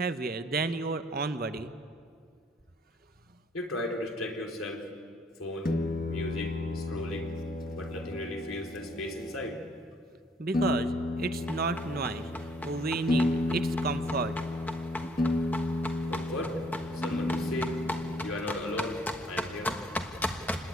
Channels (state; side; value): normal; both; correlation 0.63